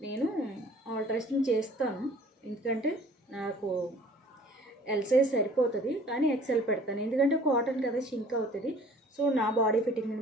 నేను ఆల్టరేషన్ చేస్తాను. ఎందుకంటే నాకు ఎల్ సైజ్ సరిపోతుంది, కానీ ఎక్సెల్ పెడతాను. ఎందుకంటే కాటన్ కదా, షింక్ అవుతుంది. సో నా బాడీ ఫిట్టింగ్ని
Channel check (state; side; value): normal; both; correlation 0.51